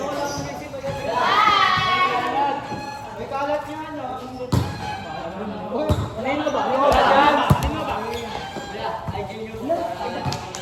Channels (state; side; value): identical; both; correlation 1.00